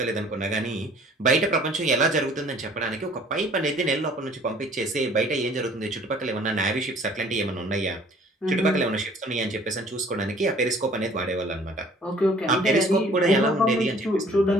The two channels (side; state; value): both; normal; correlation 0.54